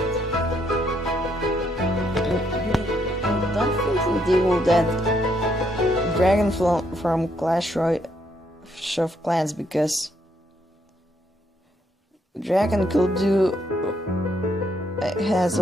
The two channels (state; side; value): normal; both; correlation 0.73